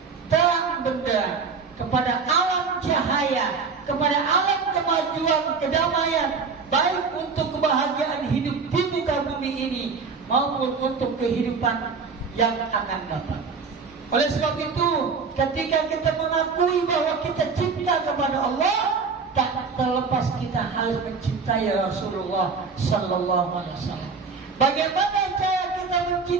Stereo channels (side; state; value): left; quieter; 5.1 dB